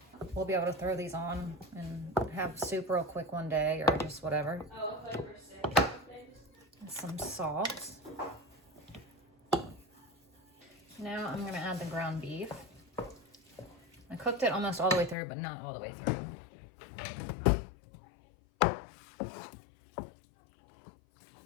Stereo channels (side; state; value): right; drops out; at 15.2 s